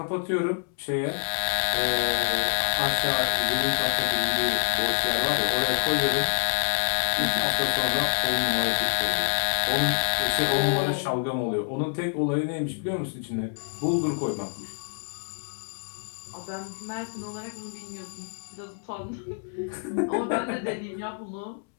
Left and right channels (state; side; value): silent; right; digital silence